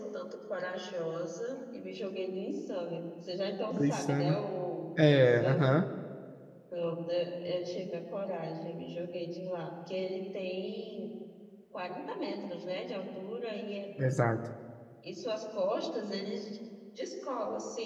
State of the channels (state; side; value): identical; both; correlation 1.00